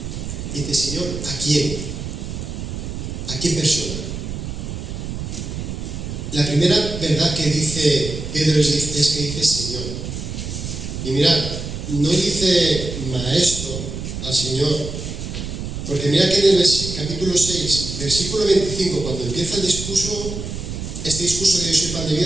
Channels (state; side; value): noise; right; rumble, 6 dB below the sound